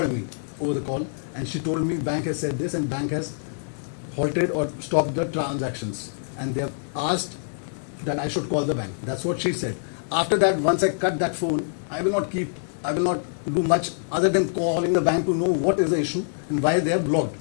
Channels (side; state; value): right; silent; 62 dB below the other